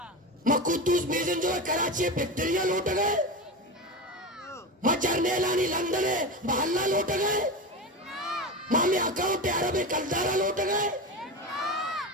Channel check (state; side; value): normal; both; correlation 0.22